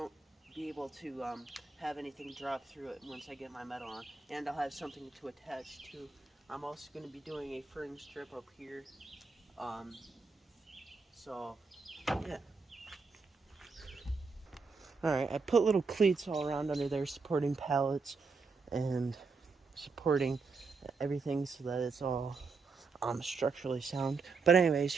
be able to have anything drop through it once I get my metal on. And I'll have something to attach to. I'm also going to be doing a fringe strip up here. So, yeah. Alright, I put little cleats all around under there supporting pallets and supporting everything so that it's all structurally sound. But anyways,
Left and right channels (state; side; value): quieter; left; 4.5 dB